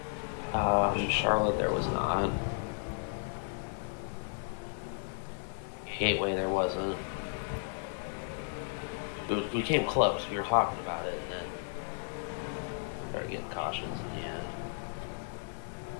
Charlotte, there was not. Gateway, there wasn't. We came close. We were talking about it, and then started getting cautions in the end.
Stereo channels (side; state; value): right; silent; 55 dB below the other